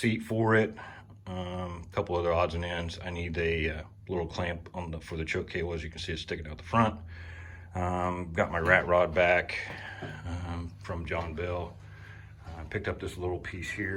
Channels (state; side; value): identical; both; correlation 1.00